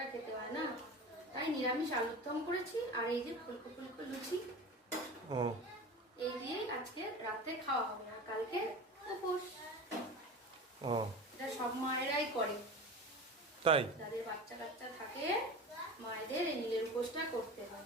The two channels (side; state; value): both; normal; correlation 0.32